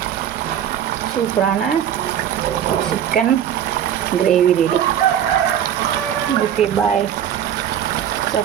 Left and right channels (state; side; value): quieter; left; 9.8 dB